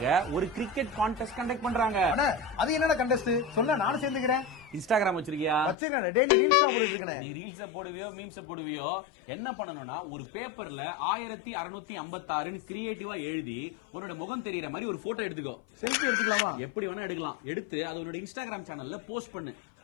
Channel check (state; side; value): drops out; right; at 5.8 s